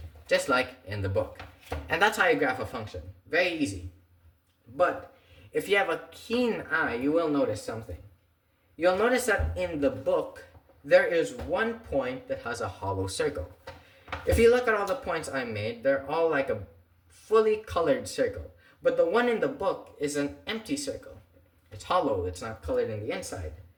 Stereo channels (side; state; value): both; identical; correlation 1.00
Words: just like in the book. And that's how you graph a function. Very easy. But if you have a keen eye, you will notice something. You'll notice that in the book, there is one point that has a hollow circle. If you look at all the points I made, they're all like a fully colored circle. But the one in the book is an empty circle. It's hollow, it's not colored in the inside.